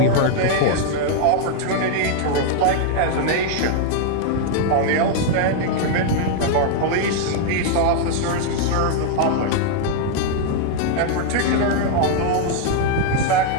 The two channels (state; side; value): different; both; correlation 0.00